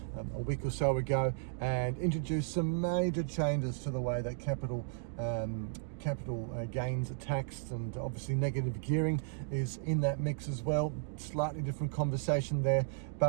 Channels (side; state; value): left; silent; digital silence